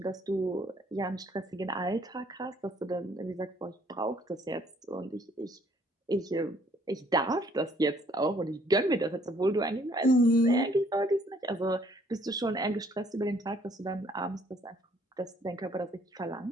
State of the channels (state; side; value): normal; both; correlation 0.63